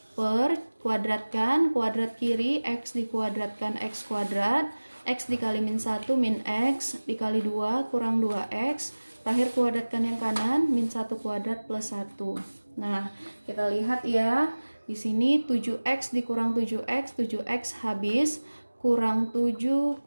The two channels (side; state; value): both; inverted; correlation -1.00